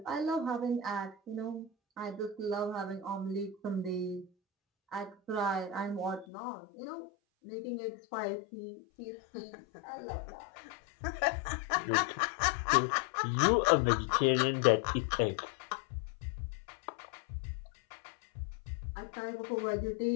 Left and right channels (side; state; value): right; drops out; at 6.2 s